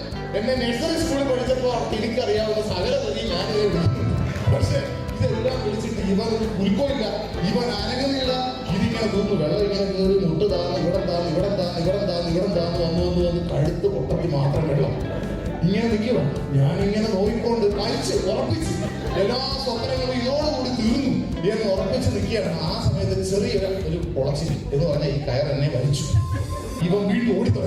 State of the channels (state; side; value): identical; both; correlation 1.00